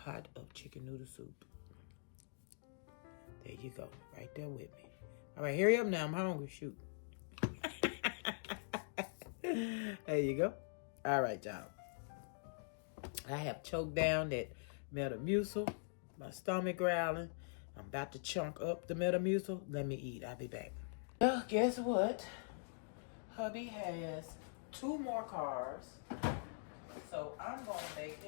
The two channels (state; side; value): silent; right; digital silence